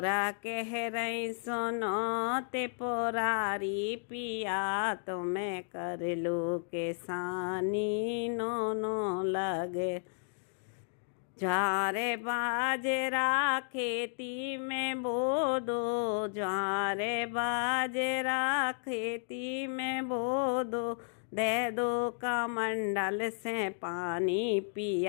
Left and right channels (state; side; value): silent; right; digital silence